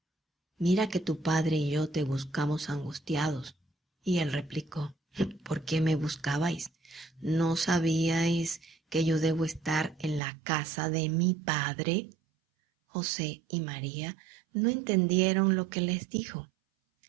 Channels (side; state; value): left; drops out; at 10.2 s